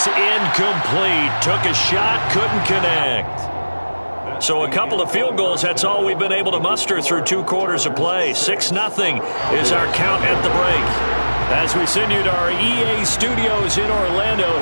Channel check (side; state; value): both; inverted; correlation -1.00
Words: incomplete. Took a shot, couldn't connect. So a couple of field goals, that's all we've been able to muster through 2 quarters of play. 6-0 is our count at the break. As we send you to our EA studios in Orlando,